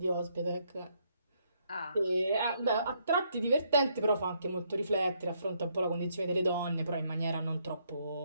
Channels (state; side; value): inverted; both; correlation -0.73